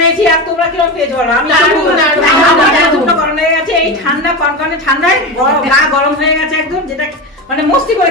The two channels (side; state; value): both; normal; correlation 0.21